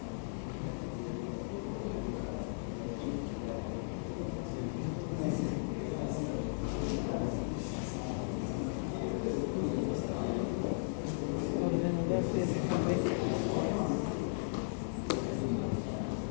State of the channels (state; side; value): silent; right; 54 dB below the other